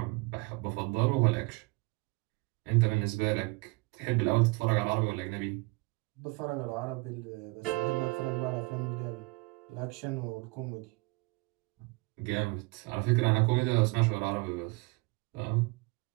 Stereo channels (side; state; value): left; quieter; 25.2 dB